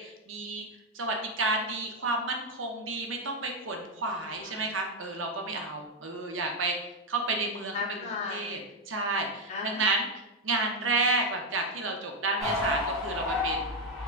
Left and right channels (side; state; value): both; normal; correlation 0.04